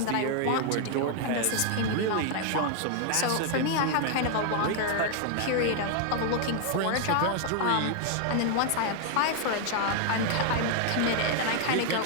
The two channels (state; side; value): different; both; correlation 0.00